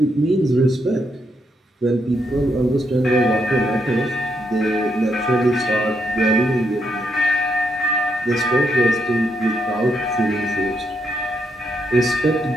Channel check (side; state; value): both; normal; correlation 0.79